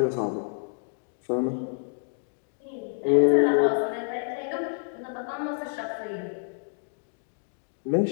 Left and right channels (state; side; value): silent; right; 59 dB below the other